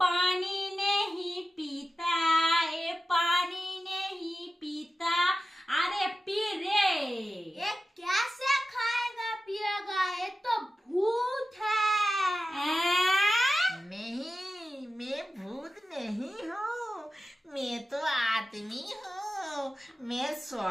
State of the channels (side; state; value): both; normal; correlation 0.94